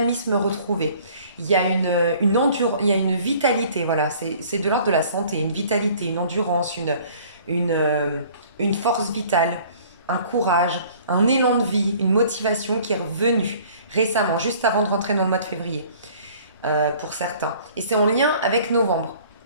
retrouvé. Il y a il y a une vitalité, voilà, c'est de l'ordre de la santé, une vitalité, une endurance, une, euh, une force vitale, un courage, un élan de vie, une motivation qui est revenue récemment, juste avant de rentrer dans le mois de février, pour certains. Et c'est en lien avec novembre.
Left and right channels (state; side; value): inverted; both; correlation -0.52